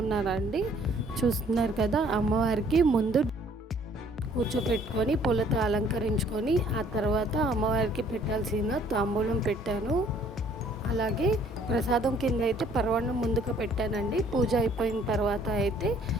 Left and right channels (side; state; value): both; normal; correlation 0.59